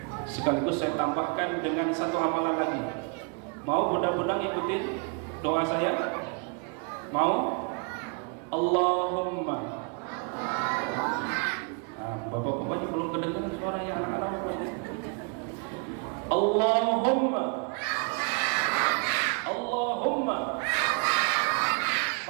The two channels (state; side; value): quieter; left; 37.1 dB